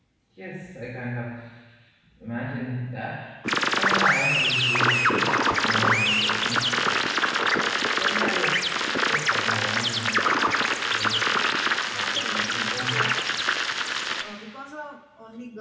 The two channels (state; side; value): identical; both; correlation 1.00